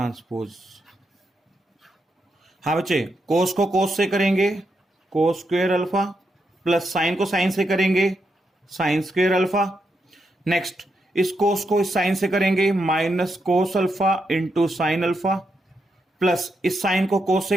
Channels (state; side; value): normal; both; correlation 0.83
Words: हाँ बच्चे कोस को कोस से करेंगे cos square alpha, plus sign को साइन से करेंगे साइन स्क्वायर अल्फा। नेक्स्ट इस कोस को इस साइन से करेंगे minus cos alpha into sine alpha, plus इस साइन को कोस